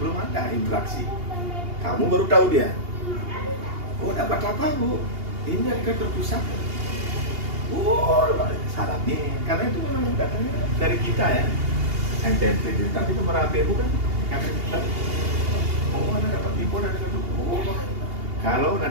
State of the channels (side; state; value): left; late; 2.8 ms